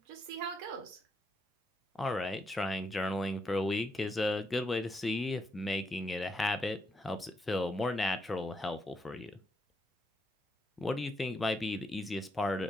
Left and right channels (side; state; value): both; normal; correlation 0.80